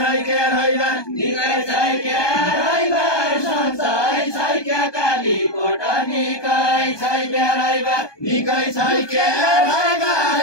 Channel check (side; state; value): right; late; 1.2 ms